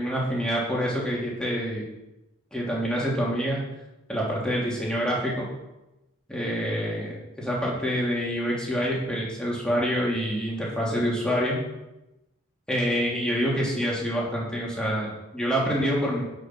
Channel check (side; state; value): both; normal; correlation 0.67